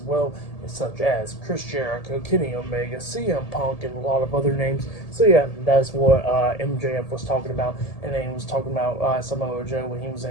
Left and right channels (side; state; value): right; late; 1.7 ms